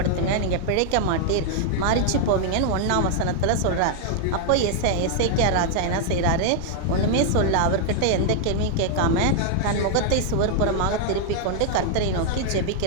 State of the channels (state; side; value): different; both; correlation 0.00